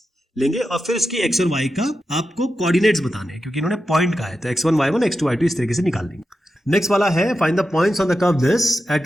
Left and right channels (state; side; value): normal; both; correlation 0.90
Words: लेंगे, और फिर इसकी x और y का आपको कोऑर्डिनेट्स बताने हैं, क्योंकि इन्होंने पॉइंट कहा है, तो x1 y1 x2 y2 इस तरीके से निकाल लेंगे। नेक्स्ट वाला है, find the points on the curve this